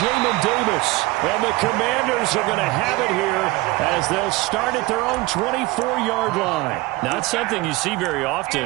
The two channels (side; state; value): left; quieter; 20.9 dB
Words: Davis. And the Commanders are going to have it here as they'll start at their own 24-yard line. Not something you see very